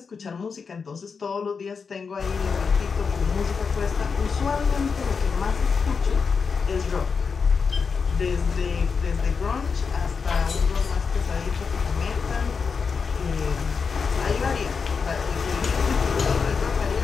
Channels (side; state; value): right; quieter; 5.4 dB